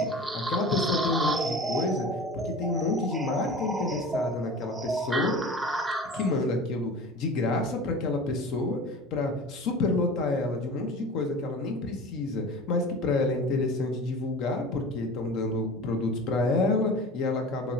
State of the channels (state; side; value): normal; both; correlation 0.36